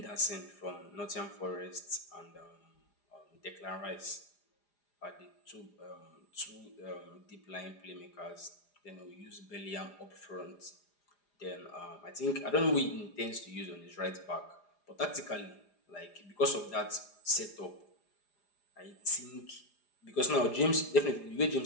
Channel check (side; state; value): right; late; 4.9 ms